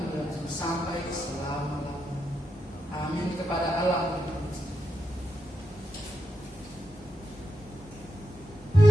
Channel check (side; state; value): both; normal; correlation 0.85